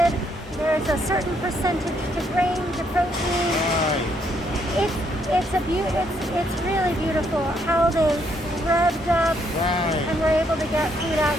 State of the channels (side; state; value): both; normal; correlation 0.72